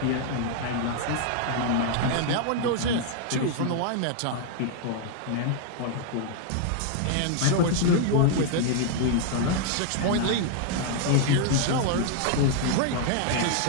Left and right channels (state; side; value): different; both; correlation 0.00